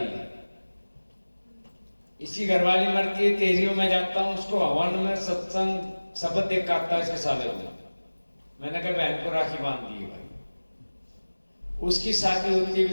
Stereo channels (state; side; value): inverted; both; correlation -1.00